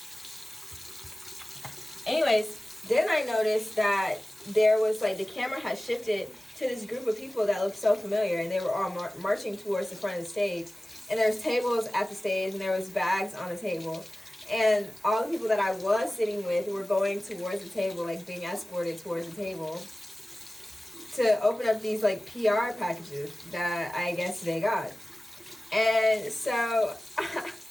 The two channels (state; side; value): normal; both; correlation 0.97